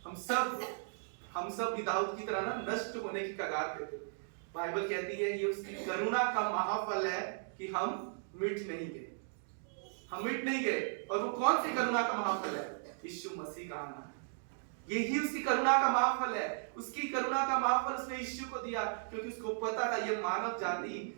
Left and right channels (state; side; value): silent; left; digital silence